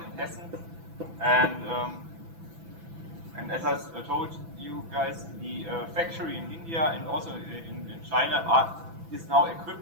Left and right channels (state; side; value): late; left; 6.0 ms